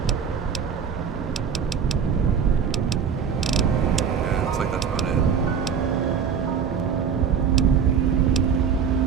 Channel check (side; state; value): left; quieter; 6.9 dB